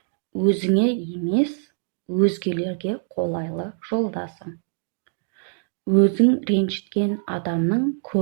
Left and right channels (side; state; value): left; silent; digital silence